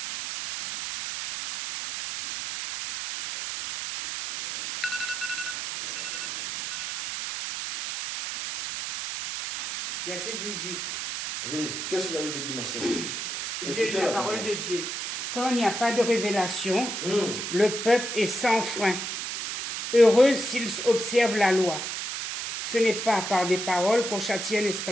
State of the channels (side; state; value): right; noise; hiss, 5 dB below the sound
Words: Verset 18. Oui, qu'est-ce que la Bible dit, ma sœur? J'ai lu la parole de Dieu. Quand il n'y a pas de révélation, le peuple est sans frein. Heureux s'ils observent la loi. Ce n'est pas par des paroles qu'on châtie un